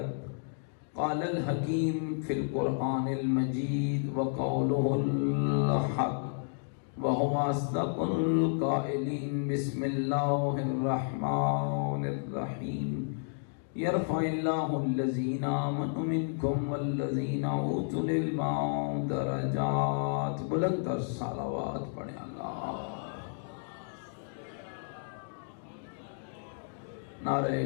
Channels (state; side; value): silent; right; digital silence